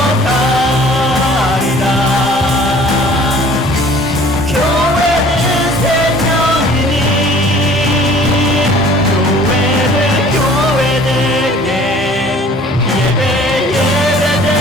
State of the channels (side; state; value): both; normal; correlation 0.51